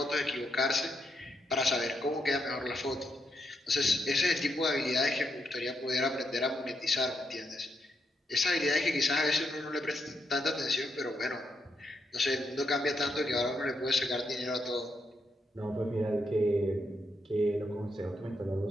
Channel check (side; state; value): both; normal; correlation 0.80